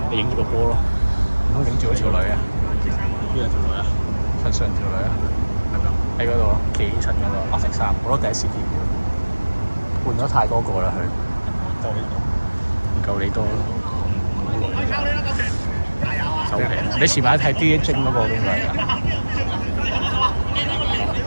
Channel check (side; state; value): both; inverted; correlation -1.00